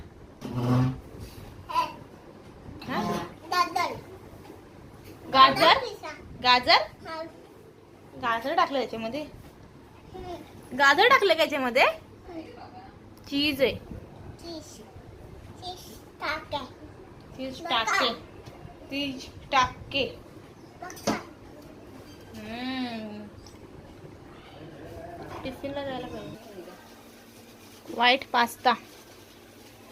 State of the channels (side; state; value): both; identical; correlation 1.00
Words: गाजर गाजर गाजर टाकलं त्याच्यामध्ये. गाजर टाकलं का याच्यामध्ये? चीज आहे. चीज टाके. चीज टाके. टिफिनला जायला पाहिजे. White pasta.